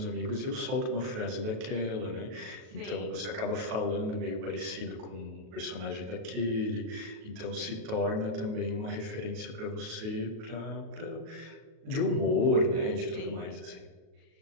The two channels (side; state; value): left; late; 37 ms